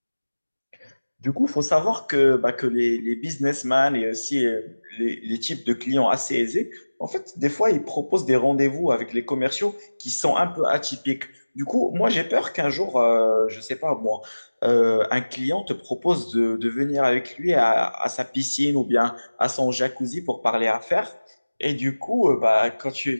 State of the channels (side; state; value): both; inverted; correlation -1.00